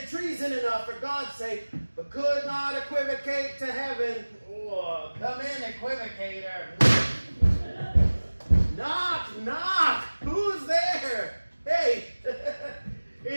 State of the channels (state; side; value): inverted; both; correlation -1.00